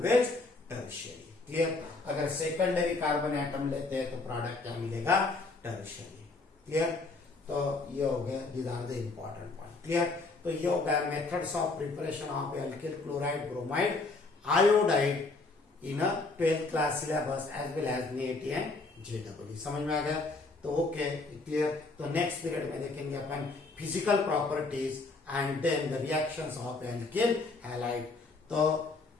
tertiary. Clear. अगर सेकेंडरी कार्बन एटम लेते हैं तो प्रोडक्ट क्या मिलेगा टर्शियरी। क्लियर। तो ये हो गया, these are the important point. Clear. तो ये हो गया methods of preparation of alkyl chloride bromide iodide in a 12th class syllabus as well as NEET and JEE। समझ में आ गया। तो ओके क्लियर। तो नेक्स्ट पीरियड में देखेंगे अपन physical properties and then the reactions of alkyl halide. तो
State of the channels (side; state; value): right; quieter; 3.6 dB